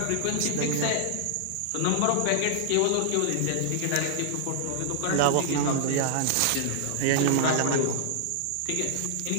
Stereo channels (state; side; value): different; both; correlation -0.01